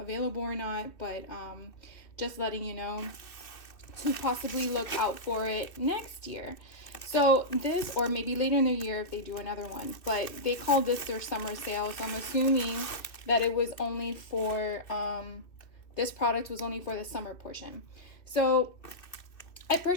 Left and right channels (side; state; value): right; late; 2.7 ms